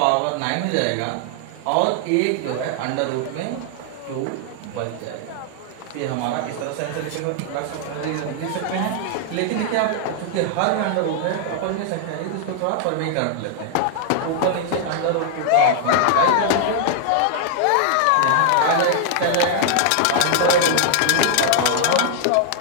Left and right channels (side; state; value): both; different; correlation 0.00